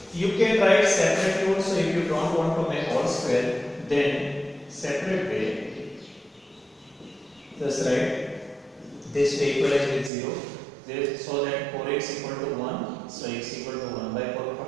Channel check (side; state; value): left; drops out; at 10.1 s